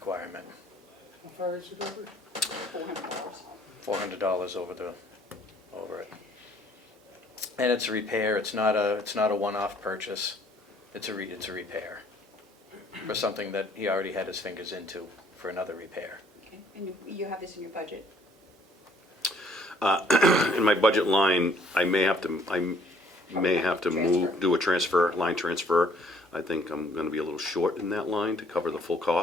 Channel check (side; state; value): both; normal; correlation 0.61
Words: How far is it over? $400. $400 over it. And it's a repair. It's not a one-off purchase. It's a repair for something that he already had his fingers into for another repair. Okay. And you have this in your budget? In my budget line, I may have to Transfer. do a line transfer. I think I'm gonna be a little short in that line to cover the full